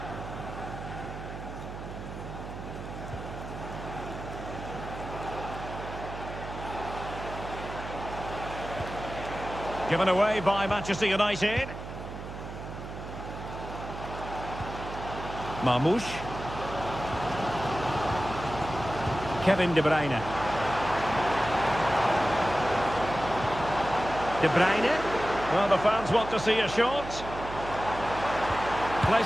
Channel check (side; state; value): right; noise; hum, 10 dB below the sound